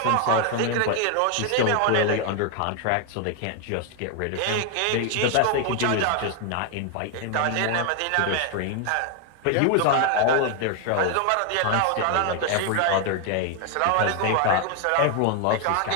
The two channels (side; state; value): both; different; correlation 0.01